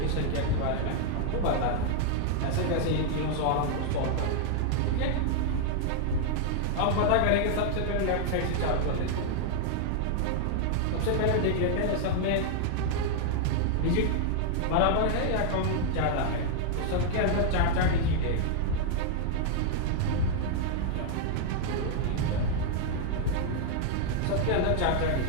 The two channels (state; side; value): different; both; correlation 0.00